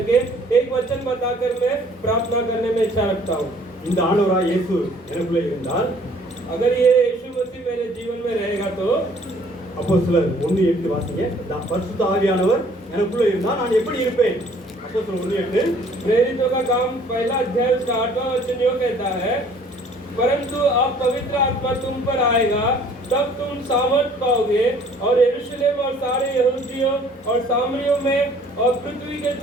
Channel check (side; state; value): both; normal; correlation 0.57